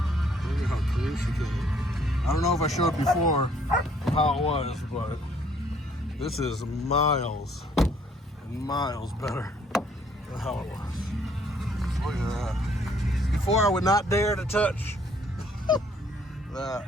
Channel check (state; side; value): normal; both; correlation 0.63